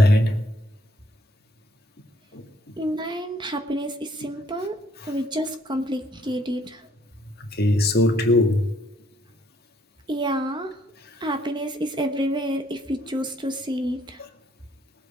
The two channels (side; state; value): both; normal; correlation 0.67